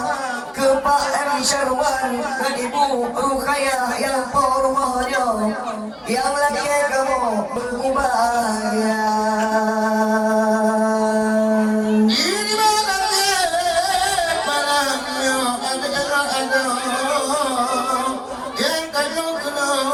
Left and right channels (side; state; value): both; identical; correlation 1.00